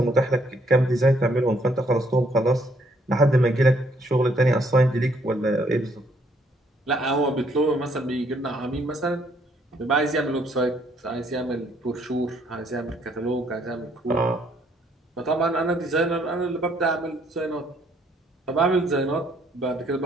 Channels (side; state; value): both; normal; correlation 0.68